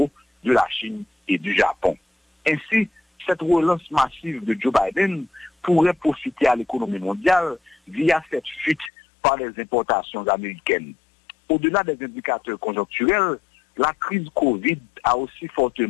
de la Chine et du Japon. Ainsi, cette relance massive de Joe Biden pourrait profiter à l'économie mondiale via cette fuite par les importations américaines. Au-delà des indicateurs conjoncturels, la crise Covid a aussi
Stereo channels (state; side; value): drops out; right; at 8.9 s